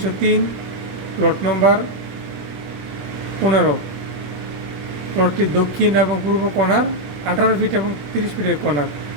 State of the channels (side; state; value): left; late; 21 ms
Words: প্লট নম্বর 15। প্লটটি দক্ষিণ এবং পূর্ব কর্নার, 18 ফিট এবং 30 ফিটের কর্নার।